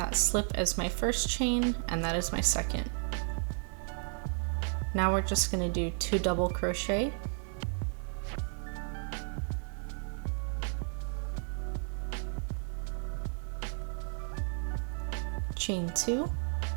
slip as my first chain, and that is my second. Now we're just going to do 2 double crochet, chain 2,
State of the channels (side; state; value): left; silent; 56 dB below the other